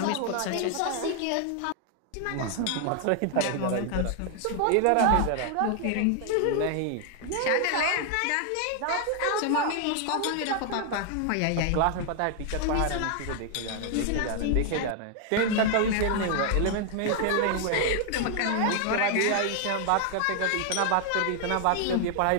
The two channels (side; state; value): both; different; correlation 0.00